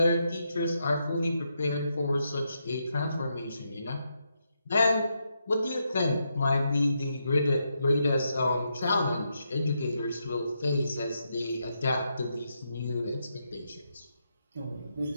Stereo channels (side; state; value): both; inverted; correlation -0.82